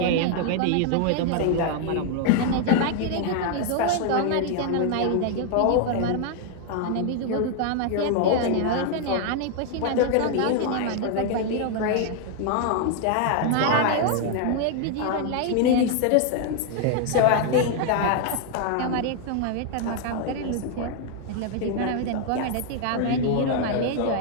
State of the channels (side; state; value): both; different; correlation 0.00